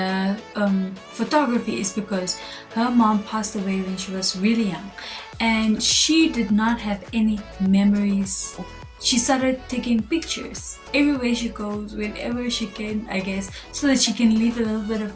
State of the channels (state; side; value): identical; both; correlation 1.00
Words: photography is because her mom passed away when she was really young, and she did not have any memories. She started taking pictures everywhere she goes, whenever she can, I guess, so that she can leave a little bit of